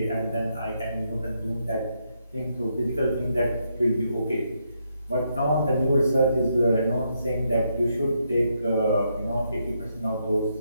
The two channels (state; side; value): inverted; both; correlation -0.78